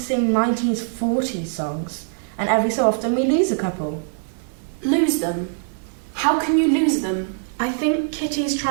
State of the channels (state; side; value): silent; left; 57 dB below the other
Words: 1940s songs, and every so often we lose a couple. Lose them? How can you lose them? I think Kitty's